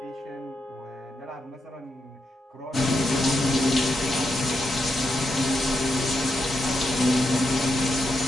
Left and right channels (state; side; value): normal; both; correlation 0.83